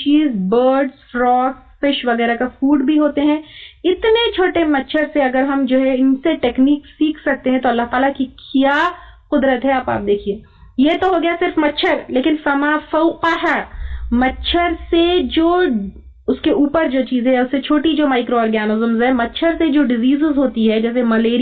برڈز, فراگز, فش وغیرہ کا فوڈ بھی ہوتے ہیں. اتنے چھوٹے مچھر سے اگر ہم جو ہے ان سے ٹیکنیک سیکھ سکتے ہیں تو اللہ تعالیٰ کی کیا قدرت ہے. آپ دیکھیے, یہ تو ہو گیا صرف مچھر, لیکن فما فوقہ, مچھر سے جو اس کے اوپر جو چیزیں ہیں, اس سے چھوٹی جو مائکرو آرگینزمز ہے, مچھر سے جو ڈیزیزز ہوتی ہے جیسے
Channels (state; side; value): identical; both; correlation 1.00